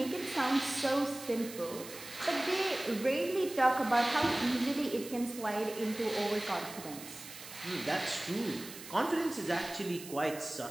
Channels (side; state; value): right; noise; hiss, 14 dB below the sound